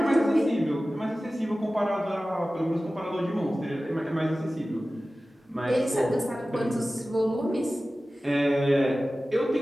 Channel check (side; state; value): both; normal; correlation 0.96